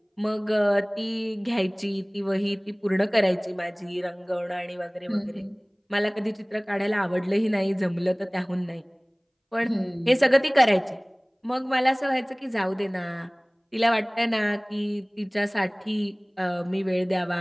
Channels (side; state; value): both; identical; correlation 1.00